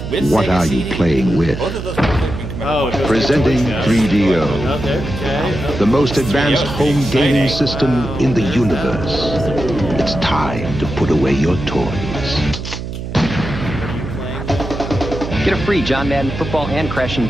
with what Sega are you CD? playing with? Both of those Presenting 3DO, the most advanced home gaming system in the universe. It's time to put away your toys. Get a free John Madden Football and Crash and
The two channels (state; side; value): noise; right; hum, 7 dB below the sound